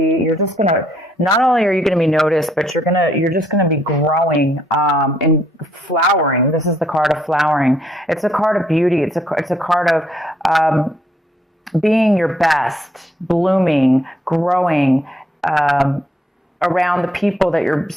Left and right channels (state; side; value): normal; both; correlation 0.71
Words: you're just going to, not only are you going to be noticed, but you're just going to be growing, and flowering. This is the card of flowering. It's a card of beauty. It's a card of, being your best, blooming, growing, around the people that you're